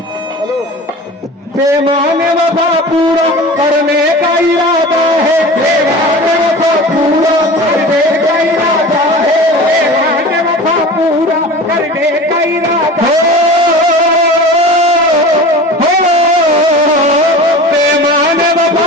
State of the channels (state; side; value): normal; both; correlation 0.36